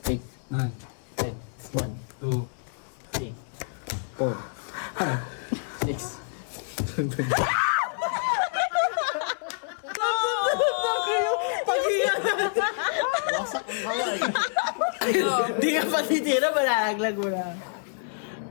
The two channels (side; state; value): right; silent; 60 dB below the other